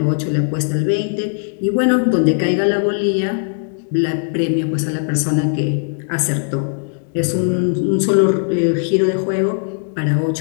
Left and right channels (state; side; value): silent; right; digital silence